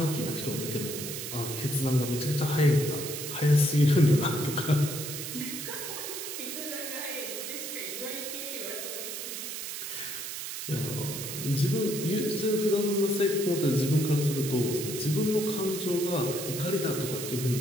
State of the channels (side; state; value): right; noise; hiss, 6 dB below the sound